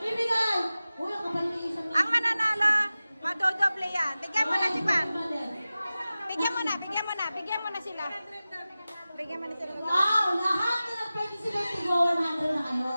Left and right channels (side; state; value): both; inverted; correlation -0.96